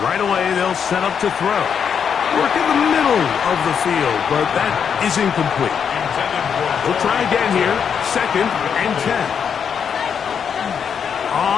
Right away, they'll set up to throw. Work in the middle of the field, but that is incomplete. We'll try again here. Second and 10.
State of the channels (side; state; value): right; quieter; 7.3 dB